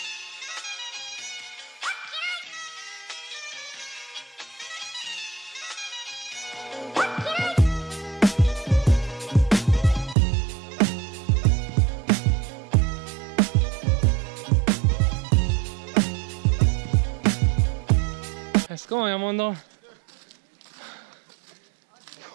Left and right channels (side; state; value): left; drops out; at 10.2 s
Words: Ezt komolyan mondom.